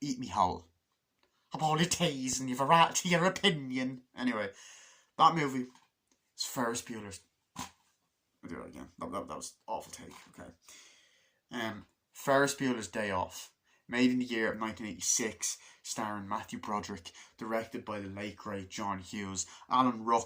eat me whole. Apologies, and you've a right to your opinion. Anyway, that movie is Ferris Bueller's... I'll do it again. That was an awful take, okay. Ferris Bueller's Day Off. Made in the year of 1986, starring Matthew Broderick, directed by the late great John Hughes. Alan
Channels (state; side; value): identical; both; correlation 1.00